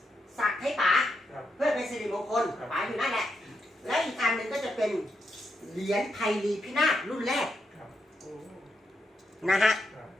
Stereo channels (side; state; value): both; normal; correlation 0.83